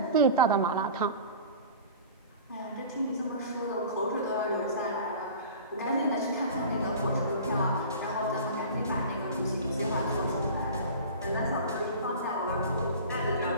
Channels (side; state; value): both; inverted; correlation -0.38